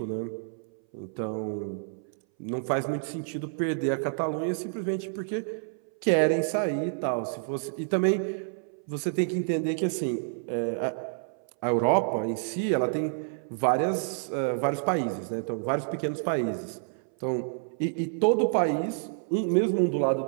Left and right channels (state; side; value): silent; left; 59 dB below the other